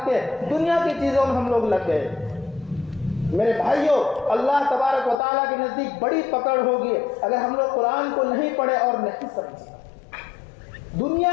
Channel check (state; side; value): drops out; right; at 5.2 s